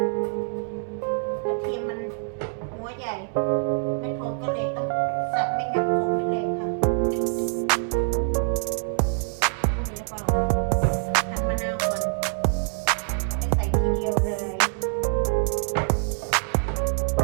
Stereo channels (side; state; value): left; silent; 62 dB below the other